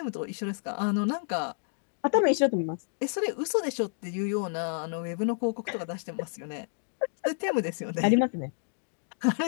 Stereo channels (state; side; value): silent; right; digital silence